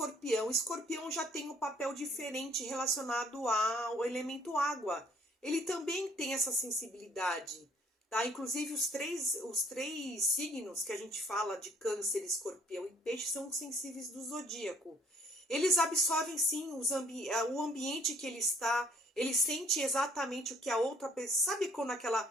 Escorpião já tem um papel diferente relacionado ao elemento água. Ele também tem essa sensibilidade, tá? Inclusive os três signos que a gente fala de Câncer, Escorpião e Peixe são sensíveis do zodíaco. Eles absorvem sim o ambiente que ele está, ele sente exatamente o que a outra pessoa... Sabe quando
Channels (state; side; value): normal; both; correlation 0.61